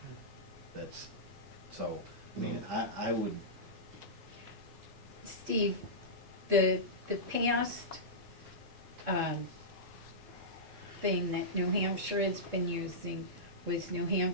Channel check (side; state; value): left; late; 3.7 ms